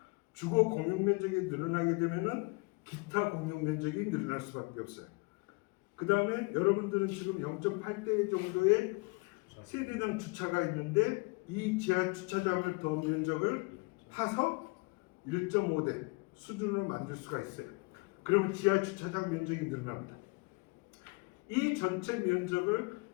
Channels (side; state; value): right; quieter; 29.0 dB